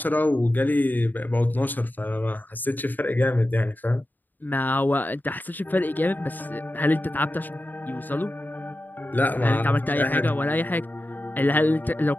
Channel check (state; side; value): late; right; 0.088 ms